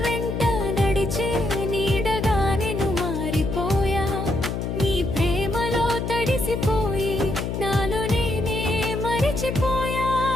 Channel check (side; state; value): left; noise; hum, 3 dB below the sound